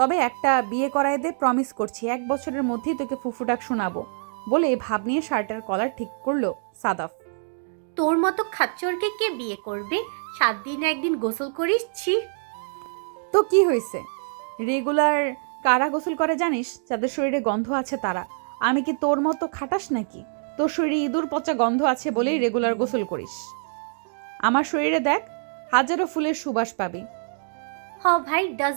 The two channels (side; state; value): left; silent; digital silence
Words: একটা বিয়ে করায় দে, প্রমিস করছি 1 বছরের মধ্যেই তোকে ফুফু ডাক শোনাবো বলে ভাব নিয়ে শার্টের কলার ঠিক করলো সাদাফ। তোর মতো খাচ্চরকে কে বিয়ে করবে? 7 দিন একদিন গোসল করিস, ছি। তো কি হয়েছে? রেগুলার কারা গোসল করে জানিস? যাদের শরীরে গন্ধ আছে তারা। আমি কি তোর মতো খাটাস নাকি? তোর শরীরে ইঁদুর পচা গন্ধ আছে বলেই রেগুলার গোসল করিস। আমার শরীরে দেখ, হাজারো ফুলের সুবাস পাবি। হ ভাই,